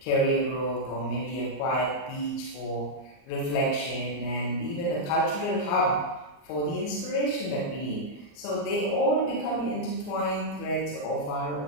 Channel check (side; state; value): right; late; 38 ms